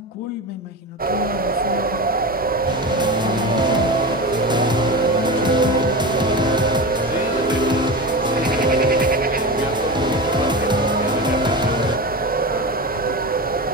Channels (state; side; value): normal; both; correlation 0.24